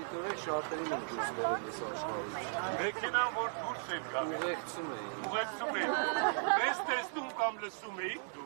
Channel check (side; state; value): left; silent; digital silence